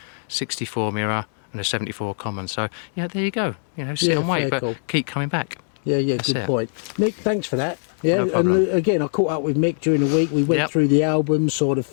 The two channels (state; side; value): silent; right; 64 dB below the other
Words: 64 mirror and a 74 common. So, yeah, there you go. You know, sit and wait, but keep coming back. Yeah, That's good point. Mick, thanks for that. Yeah, no problem. And again, I caught up with Mick during the week. We went through the album, saw the